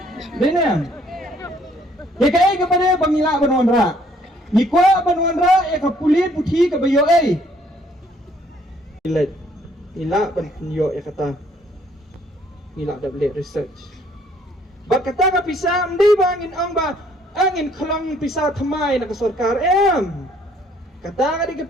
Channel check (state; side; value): normal; both; correlation 0.63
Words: Dene. Dia kaya kepada pangila banwanra. Nikwa banwanra kapulit puthi ka bayo ay. Ila ban yo kata. Ila double research. Ba kata ka pisa ndi bangin ang ba angin klang pisa thamai na ka sarkar kata ka di ka